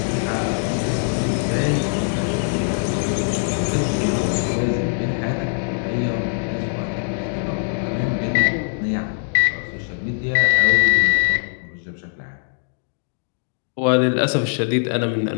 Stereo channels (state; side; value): silent; right; digital silence